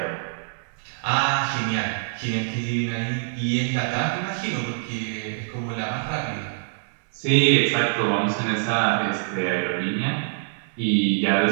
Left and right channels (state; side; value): silent; left; 62 dB below the other